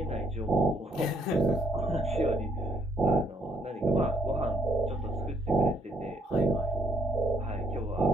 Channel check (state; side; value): normal; both; correlation 0.70